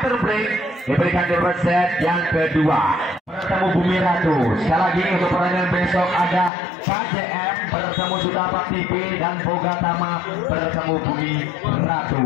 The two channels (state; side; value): drops out; right; at 6.5 s